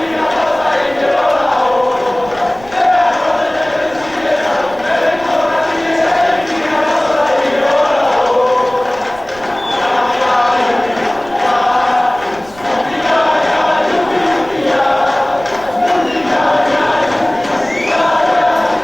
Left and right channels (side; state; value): right; noise; rumble, 21 dB below the sound